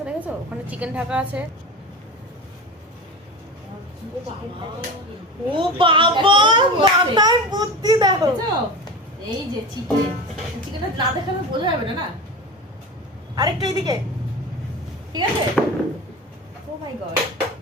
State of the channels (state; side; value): normal; both; correlation 0.29